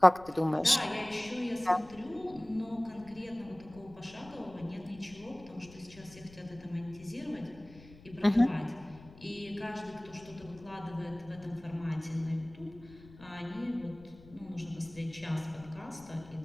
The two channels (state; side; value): noise; left; rumble, 21 dB below the sound